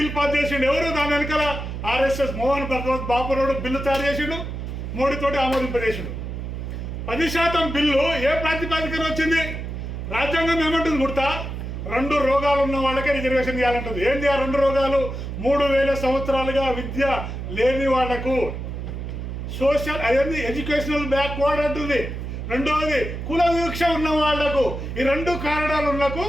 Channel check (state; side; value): noise; right; hum, 6 dB below the sound